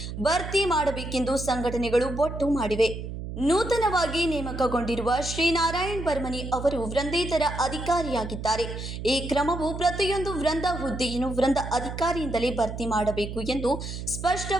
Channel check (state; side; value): noise; right; hum, 7 dB below the sound